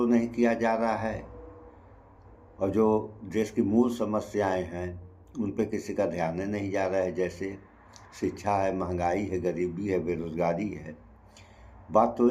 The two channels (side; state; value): both; identical; correlation 1.00